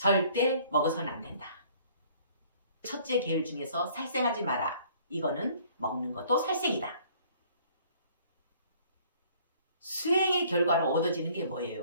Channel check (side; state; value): both; inverted; correlation -0.57